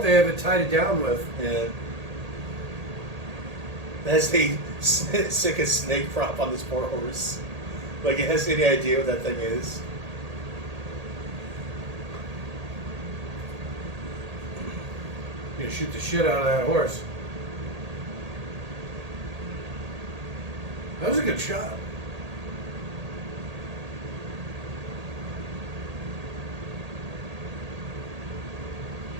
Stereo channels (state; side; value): late; left; 1.8 ms